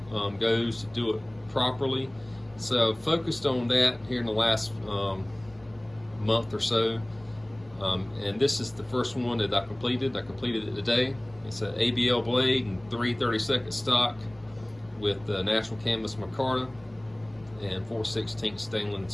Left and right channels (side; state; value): left; noise; rumble, 27 dB below the sound